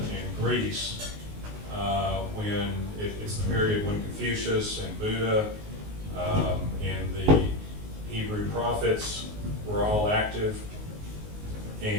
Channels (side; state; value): left; late; 19 ms